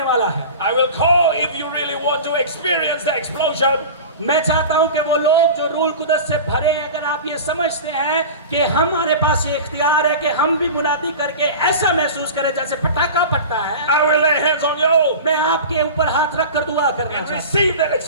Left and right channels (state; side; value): inverted; both; correlation -0.33